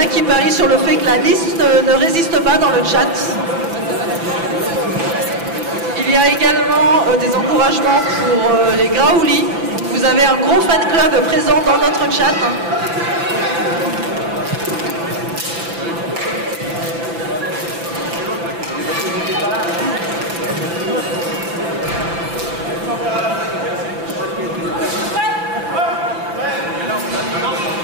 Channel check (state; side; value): late; left; 6.0 ms